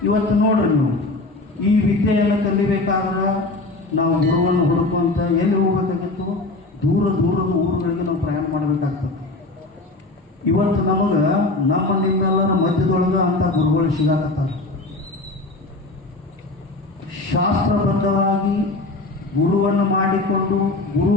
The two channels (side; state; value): right; quieter; 3.0 dB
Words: ಇವತ್ತು ನೋಡ್ರಿ ನೀವು ಈ ವಿದ್ಯೆಯನ್ನು ಕಲಿಬೇಕಾದ್ರೆ ನಾವು ಗುರುವನ್ನು ಹುಡುಕುವಂತ ಎಲ್ಲಿ ಹೋಗ್ಬೇಕಾಗಿತ್ತು? ದೂರ ದೂರದ ಊರುಗಳಿಗೆ ನಾವು ಪ್ರಯಾಣ ಮಾಡಬೇಕಾಗ್ತದೆ. ಇವತ್ತು ನಮಗೆ ನಮ್ಮ ನಿಮ್ಮೆಲ್ಲರ ಮಧ್ಯದೊಳಗೆ ಅಂತ ಗುರುಗಳು ಸಿಗಾಕತ್ತಾರೆ. ಶಾಸ್ತ್ರಬದ್ಧವಾಗಿ ಗುರುವನ್ನು ಮಾಡಿಕೊಂಡು ಗುರು